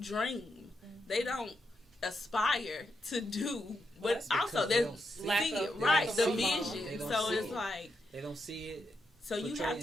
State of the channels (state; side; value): normal; both; correlation 0.84